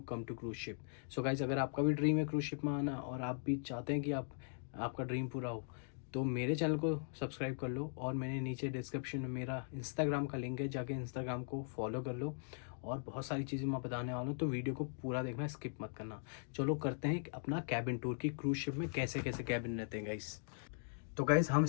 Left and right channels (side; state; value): right; silent; digital silence